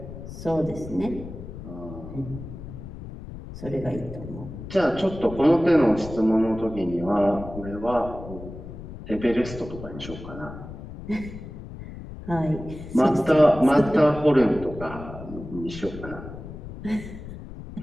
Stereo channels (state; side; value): noise; left; rumble, 12 dB below the sound